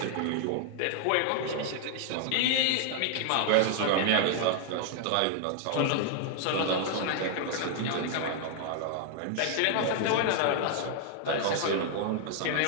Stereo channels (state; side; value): different; both; correlation 0.00